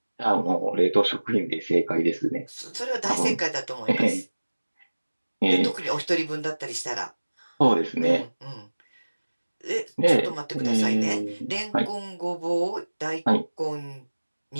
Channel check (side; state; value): both; inverted; correlation -1.00